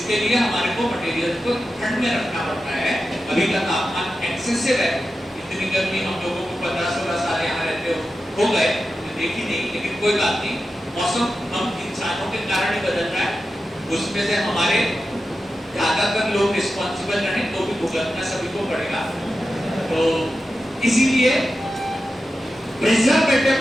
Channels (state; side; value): normal; both; correlation 0.92